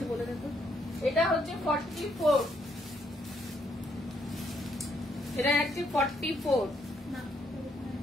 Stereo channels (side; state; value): both; normal; correlation 0.73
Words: বলে দেখো। এটা হচ্ছে 44, এটা হচ্ছে 44।